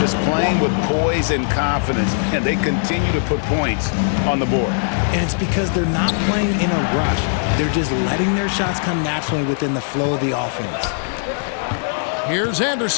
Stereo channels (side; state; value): right; silent; digital silence